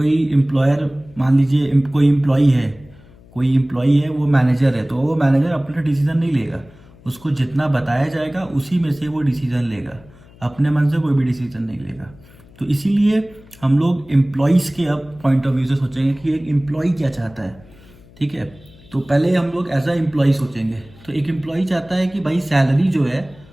एम्प्लॉयर, मान लीजिए कोई एम्प्लॉई है वो मैनेजर है, तो वो मैनेजर अपना डिसीजन नहीं लेगा, उसको जितना बताया जाएगा उसी में से वो डिसीजन लेगा, अपने मन से कोई भी डिसीजन नहीं लेगा। तो इसीलिए हम लोग एम्प्लॉयज़ के अब पॉइंट ऑफ व्यू से सोचेंगे कि एक एम्प्लॉय क्या चाहता है। ठीक है, तो पहले हम लोग एज अ एम्प्लॉय सोचेंगे। तो एक एम्प्लॉय चाहता है कि भाई सैलरी जो है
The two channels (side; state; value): left; noise; hum, 24 dB below the sound